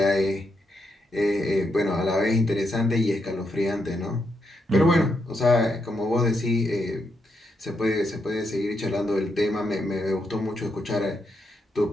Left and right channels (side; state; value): both; normal; correlation 0.81